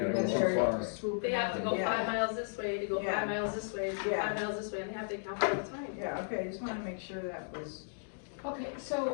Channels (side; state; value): right; silent; digital silence